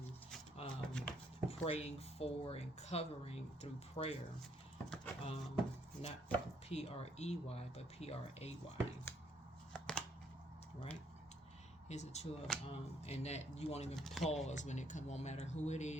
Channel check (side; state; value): both; normal; correlation 0.69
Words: praying for and covering through prayer. Not P-R-E-Y, but P-R-A-Y. Right? Here's the 2 of, and that you won't even pause when it comes. Won't matter who it